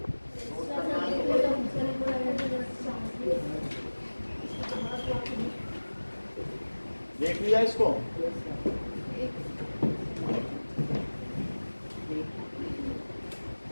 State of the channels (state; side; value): inverted; both; correlation -1.00